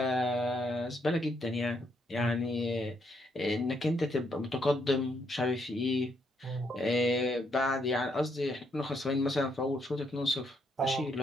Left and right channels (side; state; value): both; normal; correlation 0.75